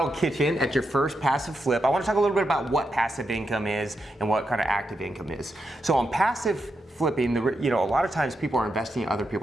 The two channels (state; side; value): normal; both; correlation 0.84